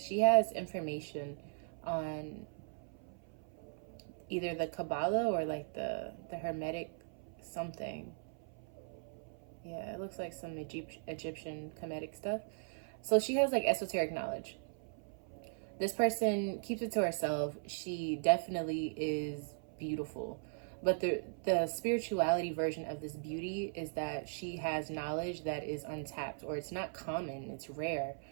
has information on either the Kabbalah or like the Hermetic something. Yeah, it looks like some Egyptian Kemetic stuff. So she has like esoteric knowledge. This person keeps it to herself. She definitely is beautiful. But the spirituality version of this beauty is that she has knowledge that is untapped, or it's not common, it's rare.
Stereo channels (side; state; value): left; silent; 52 dB below the other